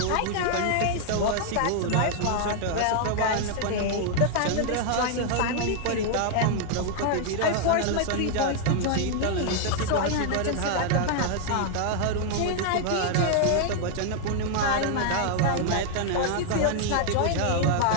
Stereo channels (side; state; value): both; different; correlation 0.00